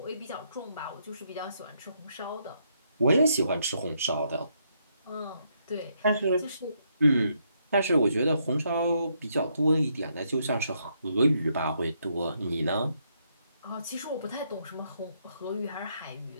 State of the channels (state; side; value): inverted; both; correlation -0.75